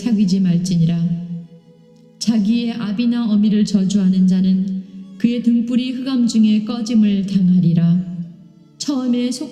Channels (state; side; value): identical; both; correlation 1.00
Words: 말지니라. 자기의 아비나 어미를 저주하는 자는 그의 등불이 흑암 중에 꺼짐을 당하리라. 처음에